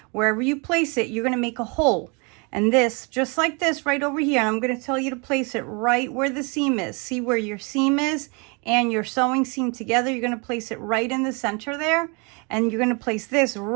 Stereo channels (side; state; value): left; quieter; 32.1 dB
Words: wherever you place it, you're going to make a hole. And this, just like this, right over here. And I'm going to tell you to place it right where the seam is. See where your seam is and your sewing seam together? You're going to place it right in the center there. And you're going to place this